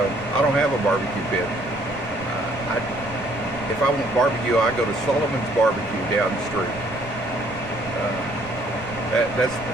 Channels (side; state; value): right; noise; rumble, 15 dB below the sound